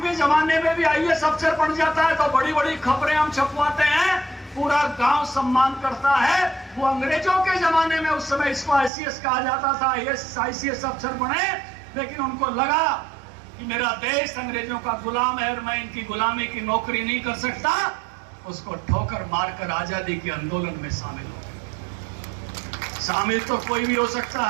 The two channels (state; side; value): drops out; left; at 8.9 s